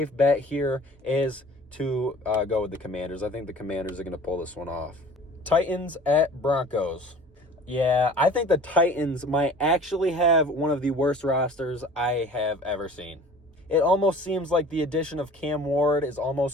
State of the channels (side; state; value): both; normal; correlation 0.46